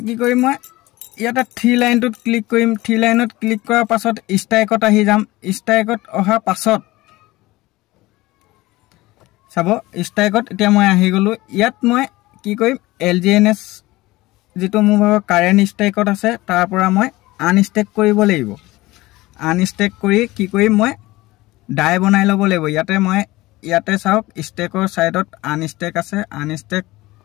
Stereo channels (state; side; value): quieter; right; 19.3 dB